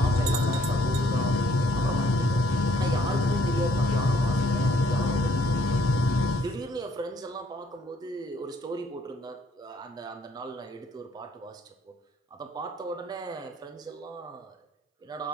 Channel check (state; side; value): normal; both; correlation 0.64